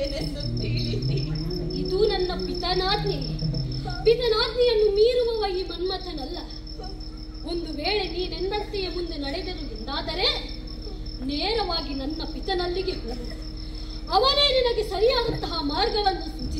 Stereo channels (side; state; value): both; identical; correlation 1.00